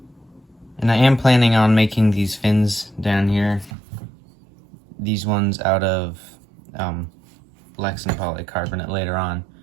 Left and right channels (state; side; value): drops out; left; at 3.7 s